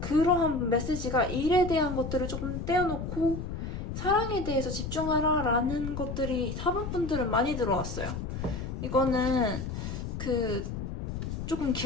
메시지가 일에 대한 것들을 조금 떼어놓고 사랑에 대해서 집중하라 라는 것들이 4번 분들은 많이 들어왔어요. 이거는 조금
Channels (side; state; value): left; noise; rumble, 5 dB below the sound